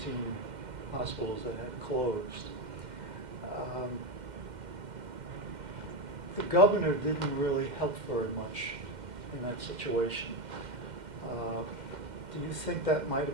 hospitals that had closed. The governor didn't really help very much in that situation. Do you think that might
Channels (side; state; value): left; late; 2.1 ms